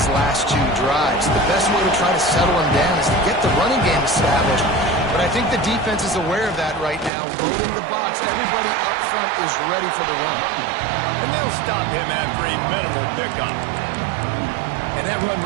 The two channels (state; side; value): drops out; left; at 7.1 s